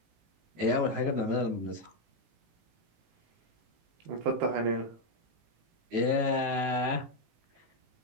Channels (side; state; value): left; late; 18 ms